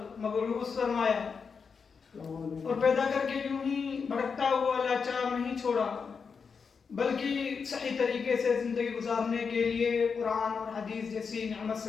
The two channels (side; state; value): right; quieter; 5.7 dB